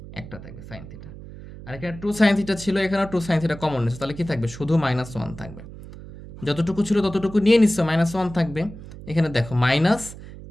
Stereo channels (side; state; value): right; noise; hum, 15 dB below the sound